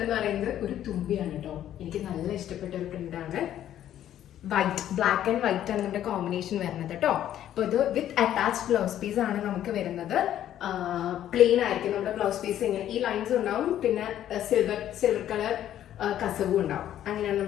എന്ന് പറയുന്നത് ഒരു തുമ്പിയാണ് കേട്ടോ. എനിക്ക് നല്ല ഇഷ്ടപ്പെട്ട ഒരു പ്രിന്റ് ആണ്. വൈറ്റ്, ബ്ലാക്ക് ആൻഡ് വൈറ്റ് ആണ് നമ്മുടെ കോമ്പിനേഷൻ വരുന്നത് കേട്ടോ. അപ്പൊ ഇത് വിത്ത് അറ്റാച്ച്ഡ് ബ്ലൗസ് പീസ് ആണ് നമുക്ക് വരുന്നത്. പ്ലെയിൻ ആയിരിക്കും നമ്മുടെ ബ്ലൗസ് പീസ്. ഇങ്ങനെ ഈ ലൈൻസ് ഉണ്ടാവും, പിന്നെ സിൽവർ കളർ കസവും ഉണ്ടാവും. അങ്ങനെയാണ്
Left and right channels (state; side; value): quieter; right; 11.4 dB